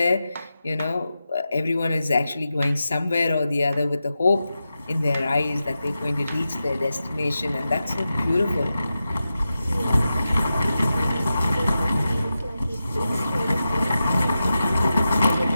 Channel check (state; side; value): inverted; both; correlation -0.91